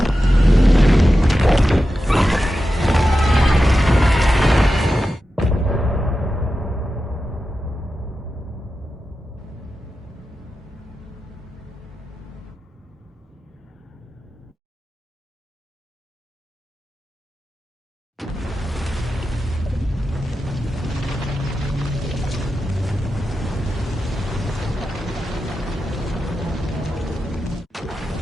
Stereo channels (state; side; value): normal; both; correlation 0.91